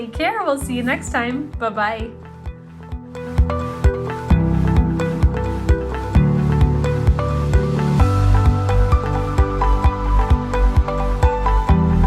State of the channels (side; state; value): both; identical; correlation 1.00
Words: care. We'll see you next time. Bye-bye.